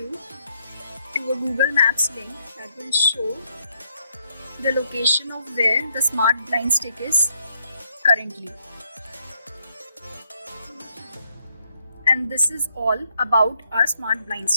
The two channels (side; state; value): both; inverted; correlation -0.75